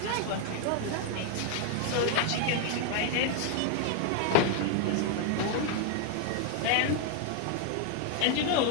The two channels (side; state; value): both; different; correlation 0.00